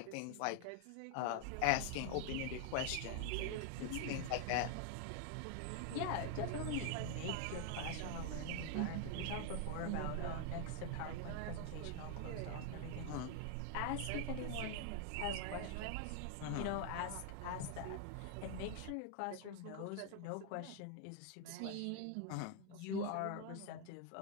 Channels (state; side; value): different; both; correlation 0.00